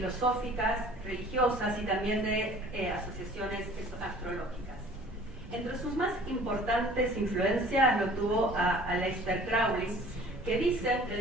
religiosas y también de asociaciones astrológicas. Entre sus más importantes influencias lo tuvo a Aleister Crowley, que dicen que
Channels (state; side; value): normal; both; correlation 0.49